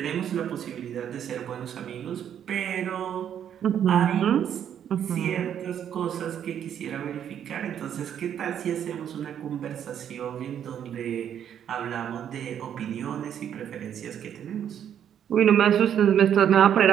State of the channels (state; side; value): quieter; left; 9.4 dB